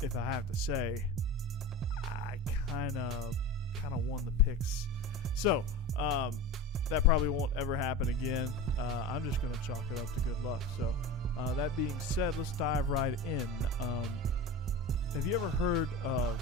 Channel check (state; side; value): normal; both; correlation 0.29